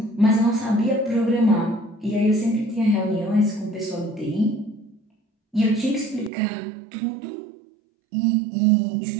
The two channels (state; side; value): drops out; left; at 6.3 s